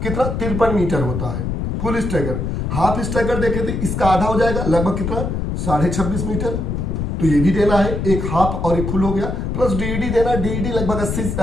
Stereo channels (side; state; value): left; noise; rumble, 2 dB below the sound